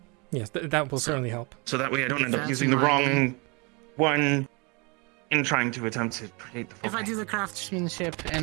Yes, that will certainly help. So that way I don't end up That's using the my- wrong one in trying to attempt to create the If I foci. do the craftsmanship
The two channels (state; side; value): quieter; left; 30.0 dB